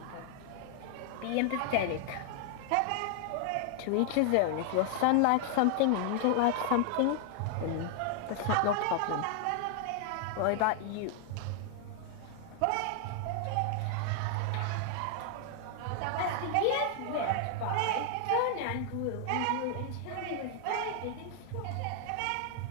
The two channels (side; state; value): both; different; correlation 0.00